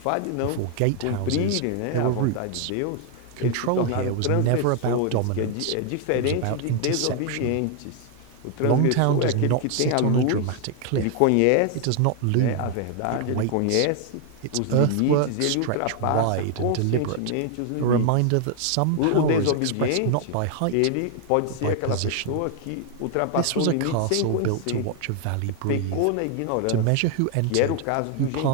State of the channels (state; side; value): different; both; correlation 0.00